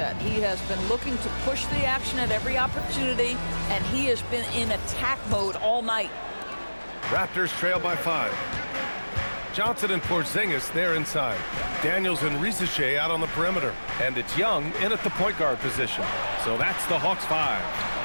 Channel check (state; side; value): inverted; both; correlation -1.00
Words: He has been looking to push the action at every opportunity, and he has been in attack mode all night. Raptors trail by 5. Johnson and Porziņģis there inside. Daniels and Risache out on the perimeter. And it's Young in at the point guard position. So that's the Hawks 5.